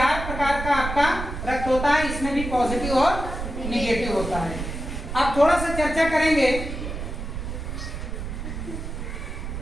प्रकार का आपका रक्त होता है, इसमें भी पॉजिटिव और निगेटिव होता है। अब थोड़ा सा चर्चा करेंगे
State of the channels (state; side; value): noise; right; rumble, 6 dB below the sound